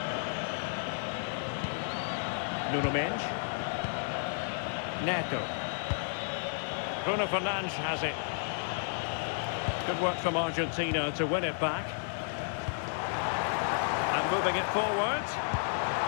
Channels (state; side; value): silent; right; 56 dB below the other